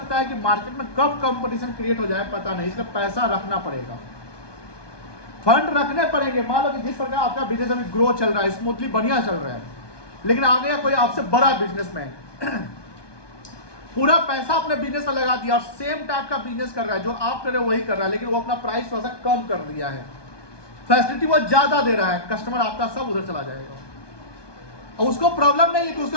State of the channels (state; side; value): late; right; 1.2 ms